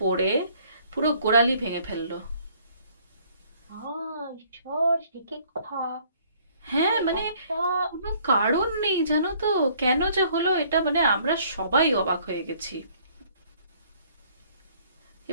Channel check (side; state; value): both; inverted; correlation -0.60